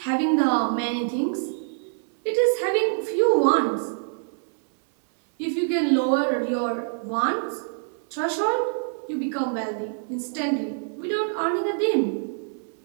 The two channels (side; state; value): left; silent; 62 dB below the other